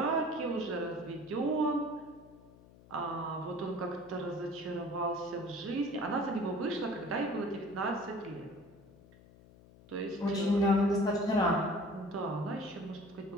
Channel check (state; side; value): noise; left; hum, 23 dB below the sound